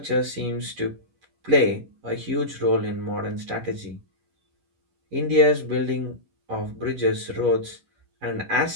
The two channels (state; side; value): late; left; 11 ms